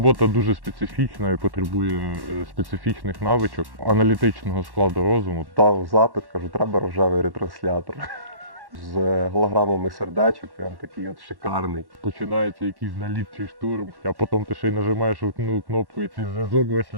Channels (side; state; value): left; late; 1.1 ms